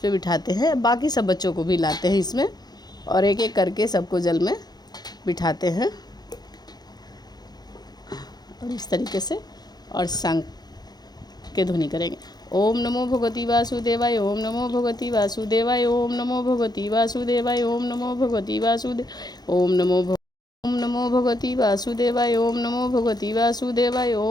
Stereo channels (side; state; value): right; late; 0.19 ms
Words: बिठाते हैं। बाकी सब बच्चों को भी लाते हैं इसमें, और एक एक करके सबको जल में बिठाते हैं। और इस तरीके से और शंख के ध्वनि करेंगे। ओम नमो भगवती वासुदेवाय। ओम नमो भगवती वासुदेवाय। ओम नमो भगवती वासुदेवाय। ओम नमो भगवती वासुदेव। ओम नमो भगवती वासुदेवाय। ओम नमो भगवती वासुदेवाय।